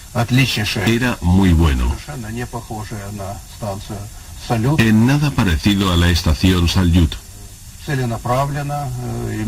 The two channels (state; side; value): identical; both; correlation 1.00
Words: era muy bueno. En nada parecido a la estación Salyut.